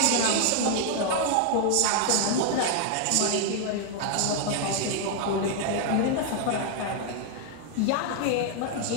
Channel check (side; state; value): both; different; correlation 0.00